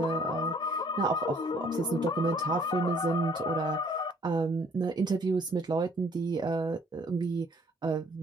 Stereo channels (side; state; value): both; normal; correlation 0.60